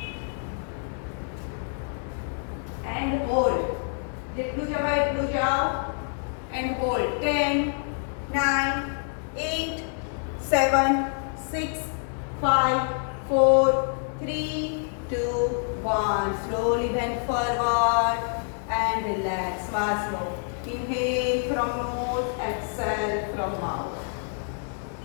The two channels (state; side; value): silent; right; 60 dB below the other